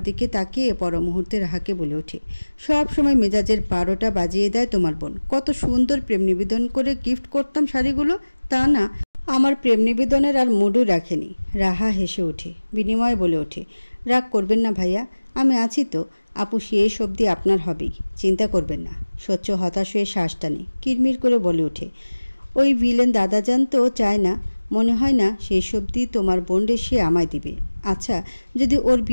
দিকে তাকিয়ে পর মুহূর্তে রাহাকে বলে ওঠে, সব সময় মেজাজের 12টা বাজিয়ে দেয় তোমার বোন। কত সুন্দর প্রেম নিবেদন করে গিফট করতাম শাড়িগুলো, তা না, আমার প্রেম নিবেদনের আর মুডও রাখেনি। রাহা হেসে ওঠে, বিনিময়ে বলে ওঠে, রাগ করবেন না ভাইয়া, আমি আছি তো। আপু শেষ অবধি আপনার হবেই, চিন্তা করবেন না। স্বচ্ছ হতাশ হয়ে শ্বাস টানে, কিরমির করে বলে ওঠে, ওই ভিলেন দাদাজান তো চায় না, মনে হয় না শেষ অবধি তোমার বোনরে সে আমায় দিবে। আচ্ছা, যদি ওর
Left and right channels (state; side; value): inverted; both; correlation -1.00